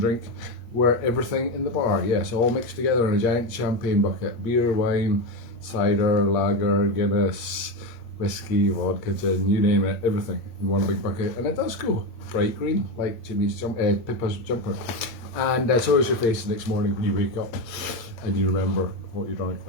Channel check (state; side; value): late; right; 8.6 ms